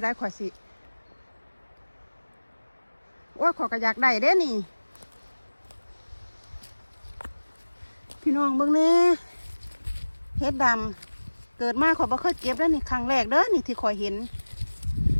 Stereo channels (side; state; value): both; inverted; correlation -1.00